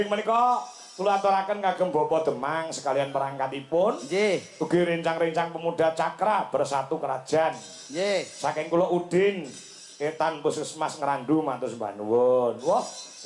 menika kula aturaken kagem Bapak Demang sekalian perangkatipun. Nggih. Ugi rencang-rencang pemuda Cakra bersatu kerajaan. Nggih. Saking kula Udin Etan Puskesmas Ngrandu matur sembah nuwun. Wah,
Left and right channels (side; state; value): both; identical; correlation 1.00